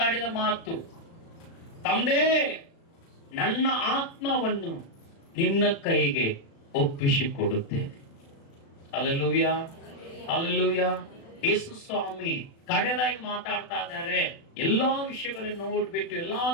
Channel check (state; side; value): late; right; 36 ms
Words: ಮಾತು, ತಂದೆ ನನ್ನ ಆತ್ಮವನ್ನು ನಿನ್ನ ಕೈಗೆ ಒಪ್ಪಿಸಿಕೊಡುತ್ತೇನೆ. Hallelujah, hallelujah. ಯೇಸು ಸ್ವಾಮಿ ಕಡೆದಾಗಿ ಮಾತಾಡ್ತಾ ಇದ್ದಾರೆ. ಎಲ್ಲಾ ವಿಷಯಗಳನ್ನು ನೋಡ್ಬಿಟ್ಟು ಎಲ್ಲಾ